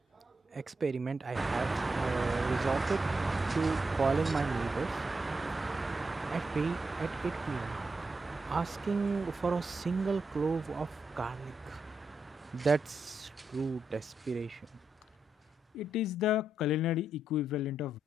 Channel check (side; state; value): both; normal; correlation 0.84